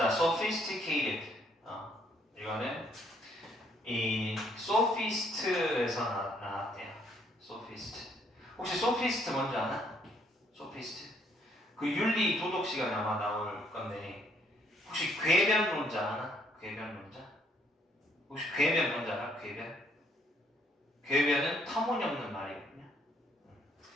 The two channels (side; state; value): both; normal; correlation 0.67